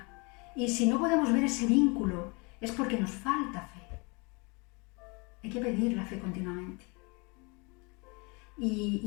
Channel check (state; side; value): quieter; right; 30.0 dB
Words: Y si no podemos ver ese vínculo, es porque nos falta fe. Hay que pedir la fe continuamente.